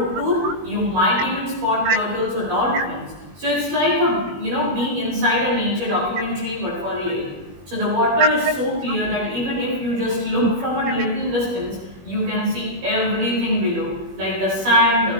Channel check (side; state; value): left; late; 21 ms